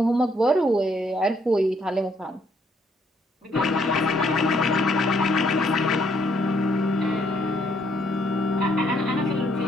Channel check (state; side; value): normal; both; correlation 0.70